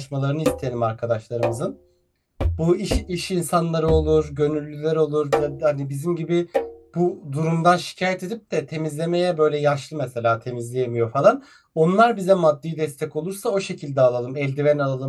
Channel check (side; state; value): both; identical; correlation 1.00